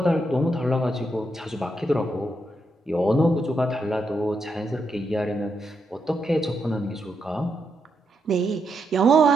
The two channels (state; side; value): normal; both; correlation 0.81